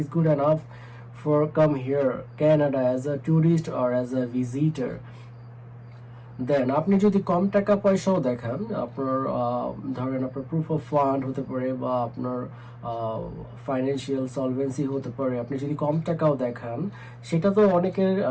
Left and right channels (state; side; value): identical; both; correlation 1.00